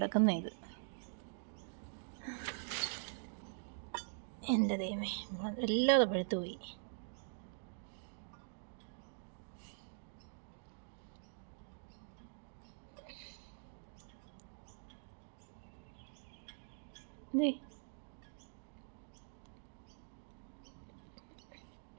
ഇത് എൻ്റെ ദൈവമേ, എല്ലാതെ പഴുത്തു പോയി.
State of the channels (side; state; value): left; silent; digital silence